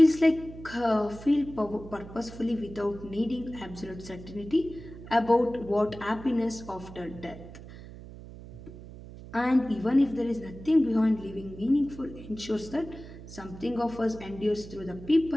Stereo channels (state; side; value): noise; right; hum, 15 dB below the sound